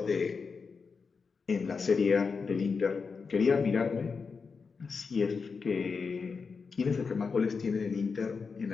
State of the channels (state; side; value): quieter; right; 5.1 dB